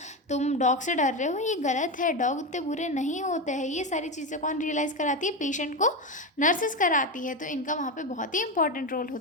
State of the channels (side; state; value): both; normal; correlation 0.15